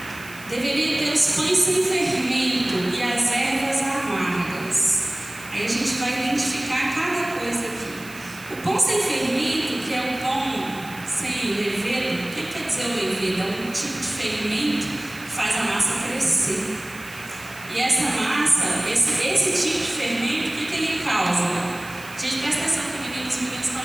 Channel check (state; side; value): noise; right; hiss, 18 dB below the sound